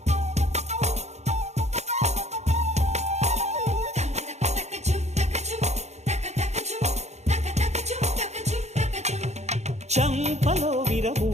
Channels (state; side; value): late; left; 0.32 ms